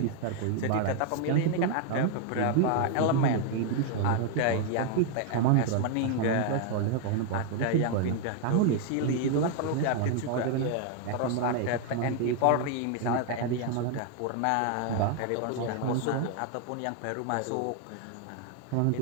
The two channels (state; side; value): different; both; correlation 0.00